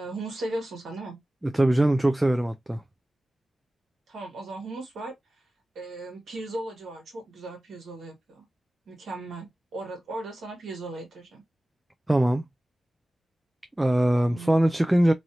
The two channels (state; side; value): normal; both; correlation 0.97